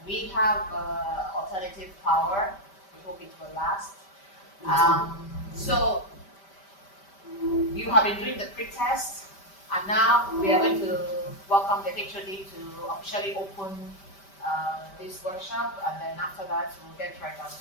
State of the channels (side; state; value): right; late; 5.1 ms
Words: we have alternative power. We hope it will last. So you have been doing the pre-test, and now we are going to welcome the HOD to officially open this workshop, and then after that we'll get right on to